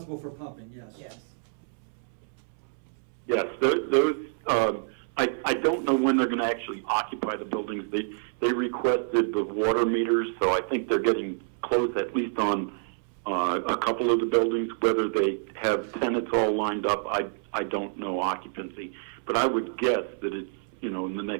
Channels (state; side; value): silent; left; 60 dB below the other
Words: for pumping, yes. Yes. Yes, those, I don't know when they're gonna actually occupy the buildings. They requested the water meters, so I think they're getting close, at least on a couple of the buildings. Whether they have tenants all lined up, I don't know occupancy. But I would guess that it's, in the